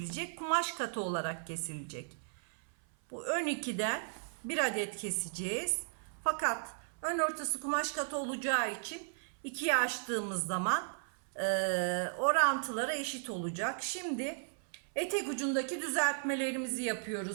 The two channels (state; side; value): silent; left; 54 dB below the other